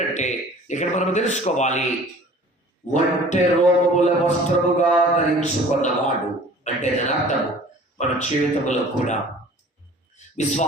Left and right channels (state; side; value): normal; both; correlation 0.47